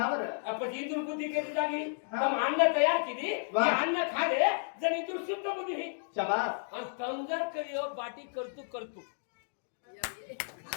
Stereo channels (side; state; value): right; silent; digital silence